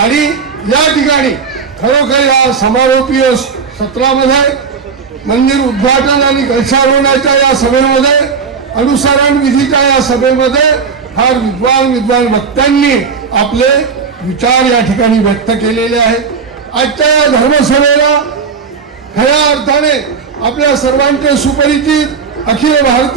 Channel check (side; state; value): left; quieter; 5.6 dB